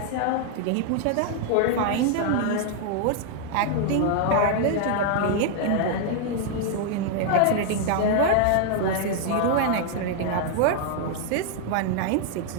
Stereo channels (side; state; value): both; different; correlation 0.00